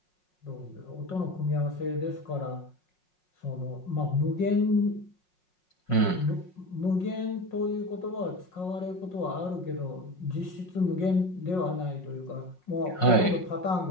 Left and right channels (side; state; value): right; late; 5.5 ms